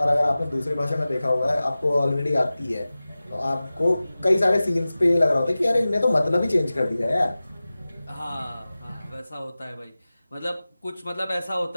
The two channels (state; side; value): inverted; both; correlation -0.97